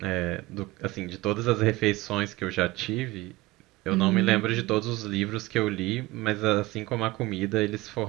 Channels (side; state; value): left; quieter; 19.8 dB